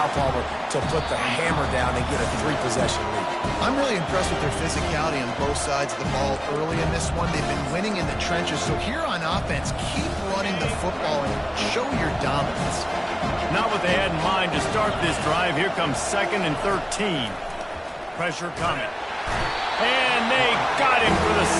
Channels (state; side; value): identical; both; correlation 1.00